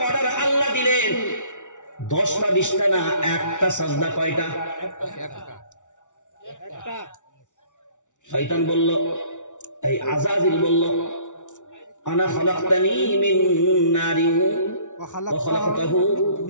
অর্ডার আল্লাহ দিলেন। 10টা 20টা না, একটা সাজদা। কয়টা? একটা। শয়তান বলল, এই আজাজিল বলল, আনা খালাকতানি মিন নারিন ওয়া খালাকতাহু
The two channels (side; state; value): right; late; 0.86 ms